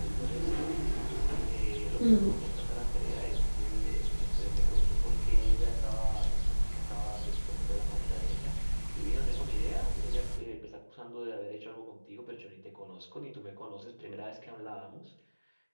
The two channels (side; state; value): both; inverted; correlation -1.00